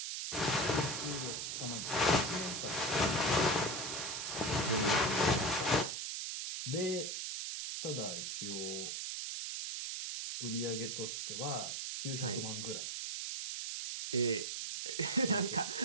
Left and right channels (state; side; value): noise; right; hiss, 3 dB below the sound